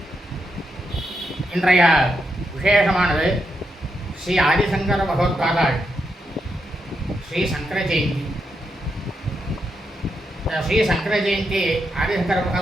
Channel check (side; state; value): both; normal; correlation 0.83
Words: இன்றைய விசேஷமானது ஸ்ரீ ஆதிசங்கர பகவத்பாதாள் ஸ்ரீ சங்கர ஜெயந்தி. ஸ்ரீ சங்கர ஜெயந்தி ஆதிசங்கர